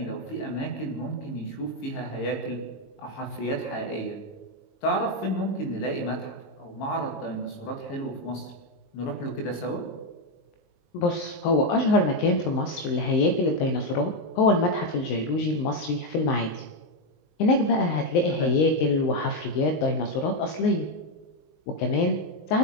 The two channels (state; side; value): late; right; 19 ms